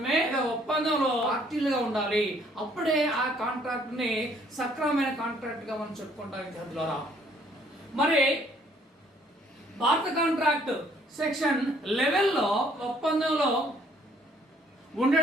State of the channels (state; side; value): normal; both; correlation 0.63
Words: ఒప్పందంలో పార్టీలుగా ఉండాలి. అప్పుడే ఆ కాంట్రాక్ట్ ని సక్రమమైన కాంట్రాక్ట్ గా మనం చెప్పుకుంటాం విద్యార్థులారా. మరి భారత కాంట్రాక్ట్ సెక్షన్ 11లో ఒప్పందంలో